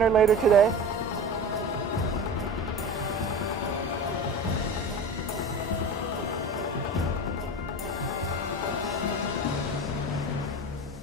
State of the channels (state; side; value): normal; both; correlation 0.31